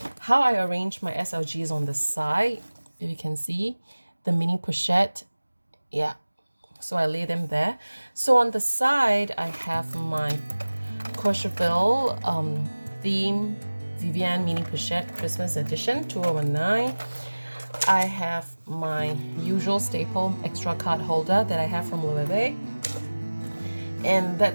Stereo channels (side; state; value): both; inverted; correlation -1.00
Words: How I arrange my SLGs on the side, if you can see, the mini pochette, yeah. So I lay them there. So on the side, I have my Courchevel theme Vivienne mini pochette Christmas edition 2019. I have my usual staple extra card holder that I have from Louis, and